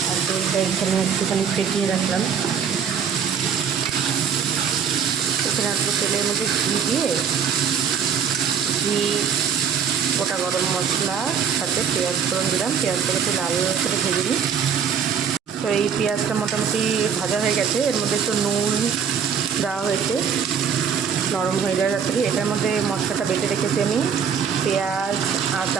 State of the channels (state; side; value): quieter; left; 7.2 dB